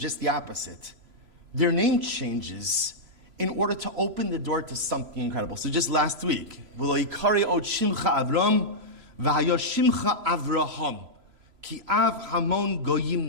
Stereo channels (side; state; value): left; late; 3.0 ms